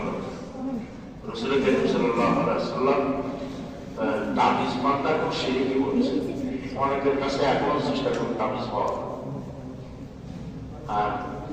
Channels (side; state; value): both; identical; correlation 1.00